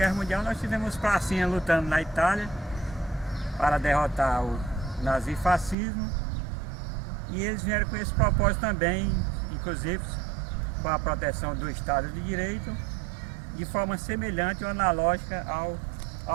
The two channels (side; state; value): left; drops out; at 5.8 s